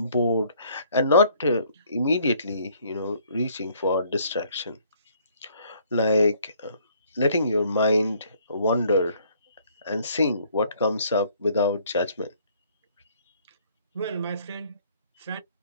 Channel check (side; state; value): both; inverted; correlation -0.62